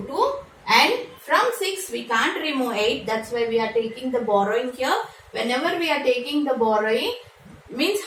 2. And from 6 we can't remove 8. That's why we are taking the borrowing here. Whenever we are taking the borrowing, means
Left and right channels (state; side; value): identical; both; correlation 1.00